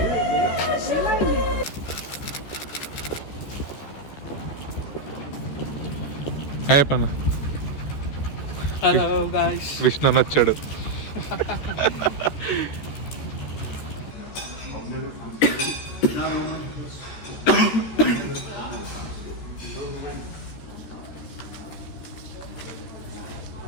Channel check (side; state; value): right; late; 14 ms